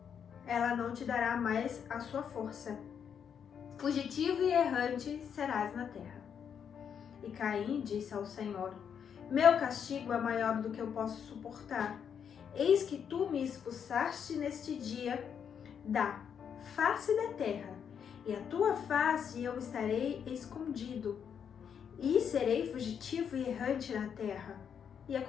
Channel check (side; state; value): right; quieter; 7.7 dB